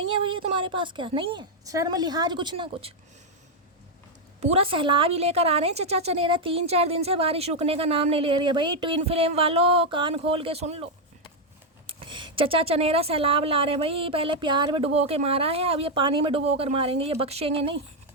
है भैया तुम्हारे पास, क्या नहीं है शर्म लिहाज कुछ ना कुछ, पूरा सैलाब ही लेकर आ रहे हैं चचा चनेरा। 3-4 दिन से बारिश रुकने का नाम नहीं ले रही है भाई। ट्विन फ्लेम वालों कान खोल के सुन लो, चचा चनेरा सैलाब ला रहे हैं भाई। पहले प्यार में डुबो के मारा है, अब ये पानी में डुबो कर मारेंगे, ये बख्शेंगे नहीं।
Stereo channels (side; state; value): both; normal; correlation 0.01